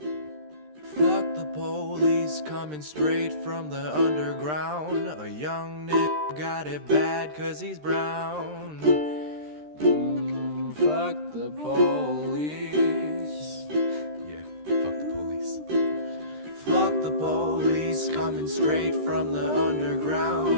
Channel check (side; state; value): left; late; 13 ms